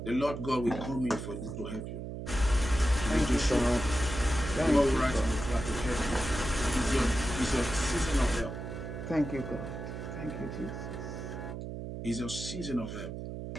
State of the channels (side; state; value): right; noise; hum, 7 dB below the sound